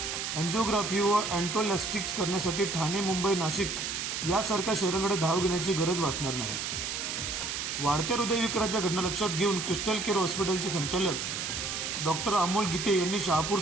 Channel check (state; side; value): noise; right; hiss, 3 dB below the sound